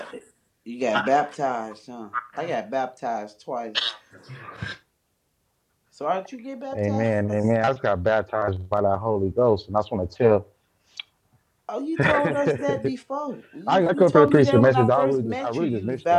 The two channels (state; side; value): identical; both; correlation 1.00